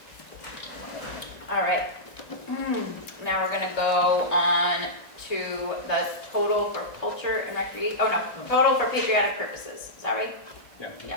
All right. Now we're gonna go on to the total for culture and recreation, oh no, total for patriotic purposes, is that right? Yeah.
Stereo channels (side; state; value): right; late; 1.9 ms